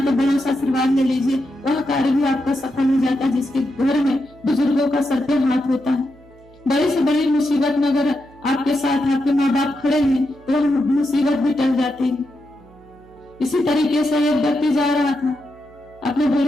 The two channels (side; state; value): right; noise; hum, 26 dB below the sound